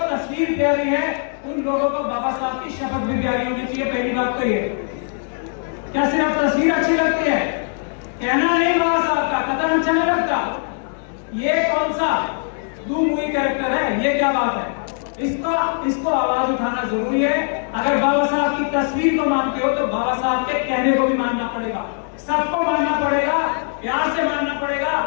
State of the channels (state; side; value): silent; right; 57 dB below the other